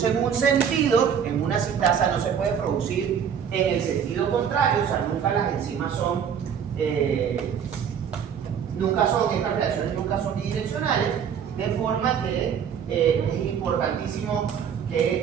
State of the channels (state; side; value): quieter; left; 7.8 dB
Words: en un sentido, en una sintasa, no se puede producir en el sentido contrario. O sea, nunca las enzimas estas reacciones nunca son bidireccionales, de forma que es importantísimo